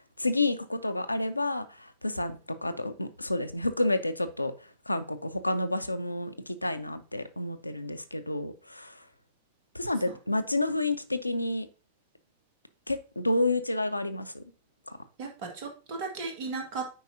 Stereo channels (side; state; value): both; inverted; correlation -0.84